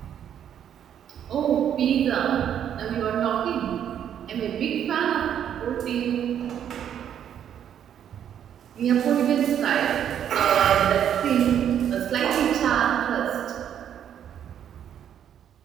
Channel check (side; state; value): left; quieter; 9.5 dB